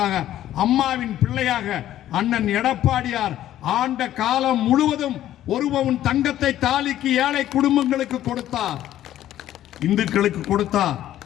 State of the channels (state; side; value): quieter; right; 12.6 dB